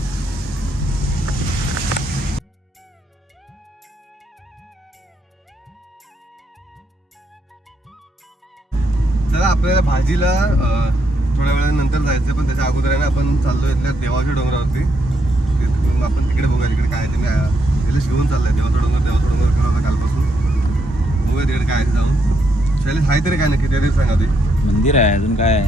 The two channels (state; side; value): normal; both; correlation 0.78